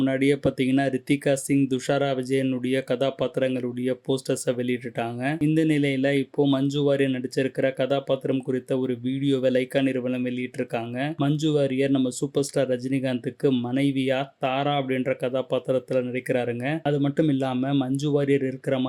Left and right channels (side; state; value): both; identical; correlation 1.00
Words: பாத்தீங்கன்னா ரித்திகா சிங், துஷாரா விஜயனுடைய கதாபாத்திரங்களுடைய போஸ்டர்ஸை வெளியிட்டுட்டாங்க. இந்த நிலையில இப்போ மஞ்சு வாரியர் நடிச்சிருக்கிற கதாபாத்திரம் குறித்த ஒரு வீடியோவை லைக்கா நிறுவனம் வெளியிட்டிருக்காங்க. மஞ்சு வாரியர் நம்ம சூப்பர் ஸ்டார் ரஜினிகாந்துக்கு மனைவியா தாரா அப்படின்ற கதாபாத்திரத்துல நடிக்கிறாருங்க. அது மட்டும் இல்லாம மஞ்சு வாரியர் இருக்கிற